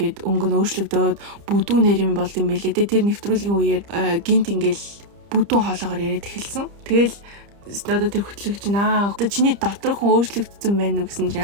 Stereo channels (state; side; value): late; left; 30 ms